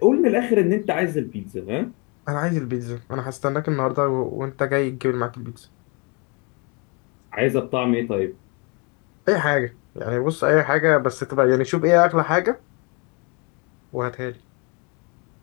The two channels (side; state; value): right; quieter; 30.2 dB